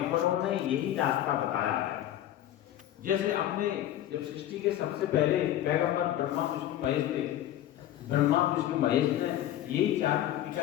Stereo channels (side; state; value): right; quieter; 12.6 dB